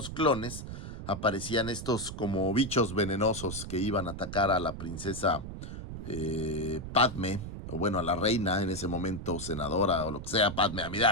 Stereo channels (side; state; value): right; noise; rumble, 9 dB below the sound